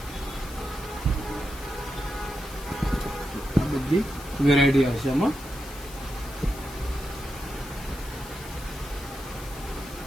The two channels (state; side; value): noise; left; hiss, 15 dB below the sound